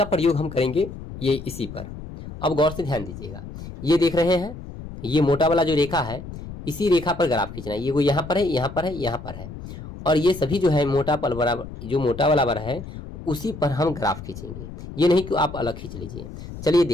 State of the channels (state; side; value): noise; left; rumble, 12 dB below the sound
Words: प्रयोग हम करेंगे ये इसी पर। अब गौर से ध्यान दीजिएगा, ये देख रहे हैं, ये मोटा वाला जो रेखा है, इसी रेखा पर ग्राफ खींचना है। ये वो यहाँ पर है, यहाँ पर है, यहाँ पर है, और ये सभी जो है मोटा पल बराबर, जो मोटा वाला बर है उसी पर हम ग्राफ खींचेंगे। ये नहीं कि आप अलग खींच लीजिए। चलिए